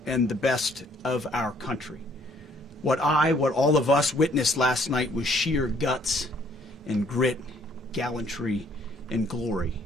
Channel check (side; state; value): both; normal; correlation 0.63